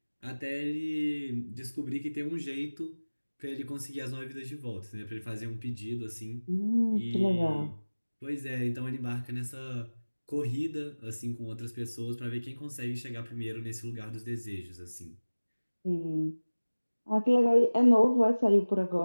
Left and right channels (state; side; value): inverted; both; correlation -1.00